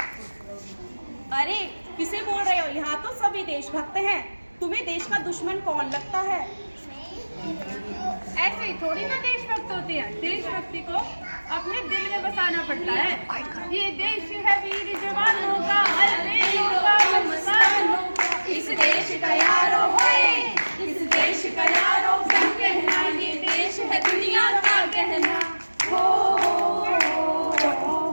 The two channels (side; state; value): both; inverted; correlation -1.00